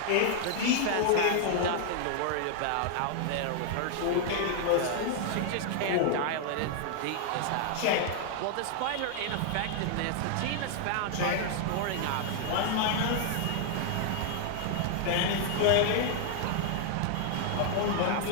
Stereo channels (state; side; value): different; both; correlation 0.00